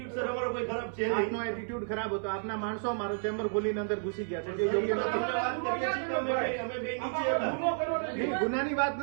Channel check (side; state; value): left; silent; 57 dB below the other